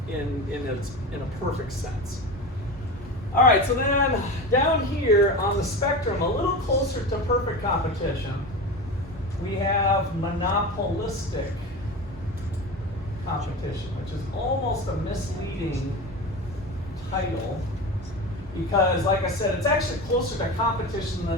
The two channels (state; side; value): normal; both; correlation 0.27